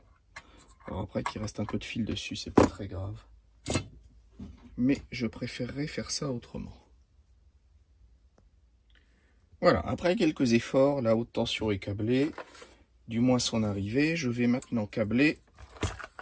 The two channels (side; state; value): both; identical; correlation 1.00